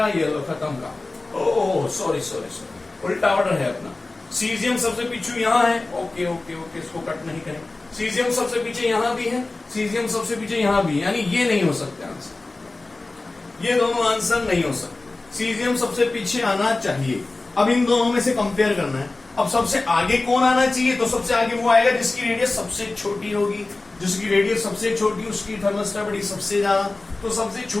ये लो, खत्म का। ओह सॉरी सॉरी सॉरी, उल्टा ऑर्डर है अपना। सीजियम सबसे पीछे यहां है, ओके ओके ओके, इसको कट नहीं करें। सीजियम सबसे पीछे यहां भी है, सीजियम सबसे पीछे यहां भी, यानी ये नहीं हो सकते आंसर, ये दोनों आंसर नहीं हो सकते। सीजियम सबसे पीछे आना चाहिए। अब इन दोनों में से कंपेयर करना है। अब सबसे आगे कौन आना चाहिए? तो सबसे आगे वो आएगा जिसकी रेडियस सबसे छोटी होगी, जिसकी रेडियस सबसे छोटी उसकी थर्मल स्टेबिलिटी सबसे ज्यादा। तो सबसे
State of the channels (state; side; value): quieter; right; 3.2 dB